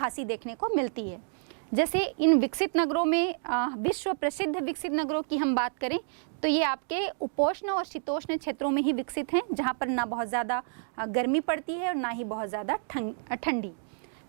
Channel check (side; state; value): left; silent; digital silence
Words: देखने को मिलती है। जैसे इन विकसित नगरों में विश्व प्रसिद्ध विकसित नगरों की हम बात करें तो ये आपके उपोष्ण और शीतोष्ण क्षेत्रों में ही विकसित हैं, जहाँ पर ना बहुत ज़्यादा गर्मी पड़ती है और ना ही बहुत ज़्यादा ठंडी,